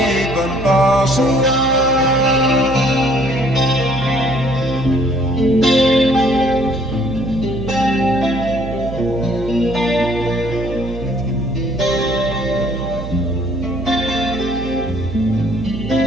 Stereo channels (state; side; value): noise; right; hum, 9 dB below the sound